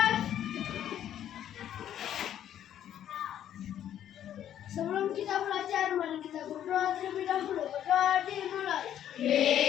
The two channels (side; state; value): right; quieter; 10.7 dB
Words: Sebelum kita belajar, mari kita berdoa terlebih dahulu. Berdoa dimulai.